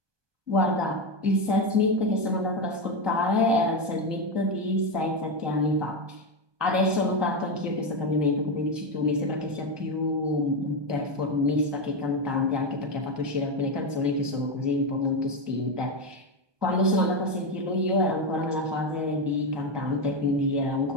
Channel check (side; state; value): left; late; 1.2 ms